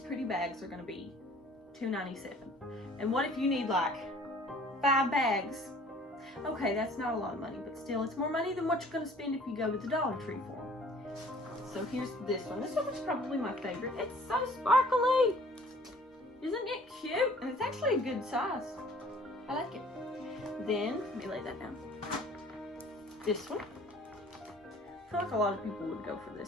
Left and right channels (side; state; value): both; normal; correlation 0.53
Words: bags are going to be $2.97. And what if you need like 5 bags? Okay, that's not a lot of money, but still, it's more money than what you're going to spend if you go to the Dollar Tree for them. So here's this one. This one is probably my favorite. It's so sparkly. Isn't it cute? And it's actually a good size. I like it. Then, let me lay that down. This one. I feel like a lot of people would go for